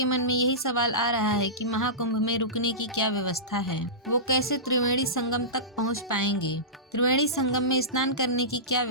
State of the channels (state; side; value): normal; both; correlation -0.19